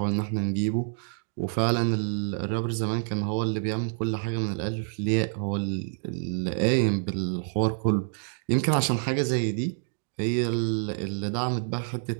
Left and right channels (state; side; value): silent; left; digital silence